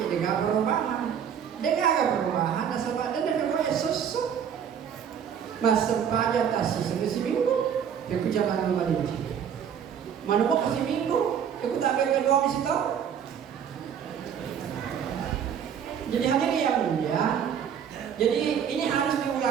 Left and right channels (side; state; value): left; quieter; 8.2 dB